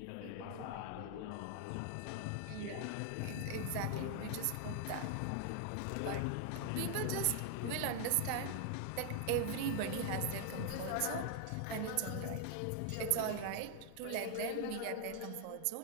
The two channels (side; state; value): both; different; correlation 0.00